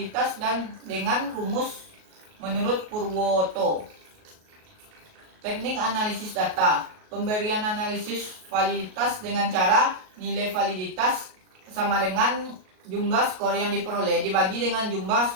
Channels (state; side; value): late; left; 38 ms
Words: dan dengan rumus menurut Purwoto. Teknik analisis data, pemberian analisis validitas dengan cara nilai validitas sama dengan jumlah skor yang diperoleh dibagi dengan jumlah